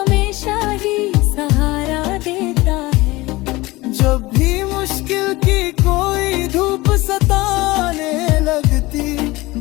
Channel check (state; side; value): quieter; right; 20.7 dB